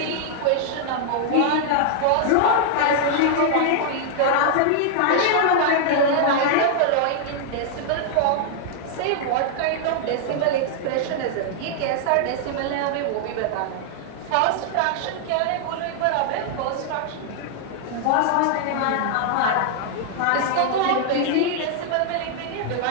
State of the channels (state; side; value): different; both; correlation -0.01